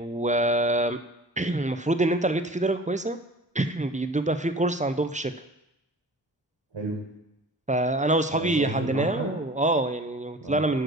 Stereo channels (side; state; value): both; normal; correlation 0.42